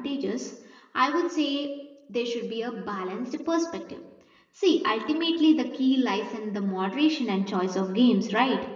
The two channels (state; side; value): identical; both; correlation 1.00